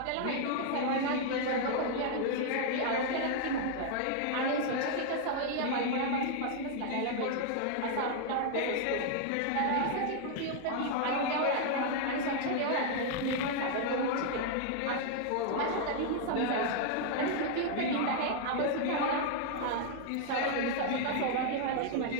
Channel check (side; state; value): both; different; correlation 0.00